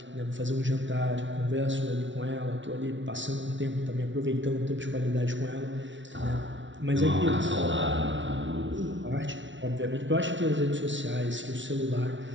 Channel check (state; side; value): late; left; 0.55 ms